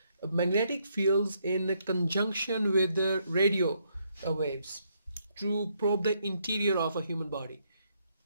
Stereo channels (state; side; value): inverted; both; correlation -0.74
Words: magnetic fields in conjunction with the radio waves to probe the interior of a human body.